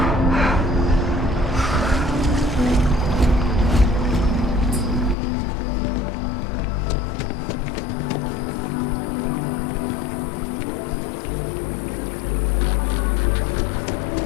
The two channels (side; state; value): right; drops out; at 5.2 s